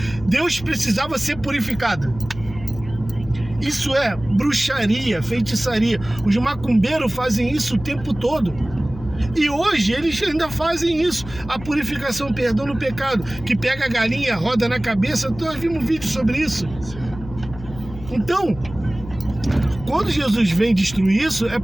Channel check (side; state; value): left; noise; hum, 14 dB below the sound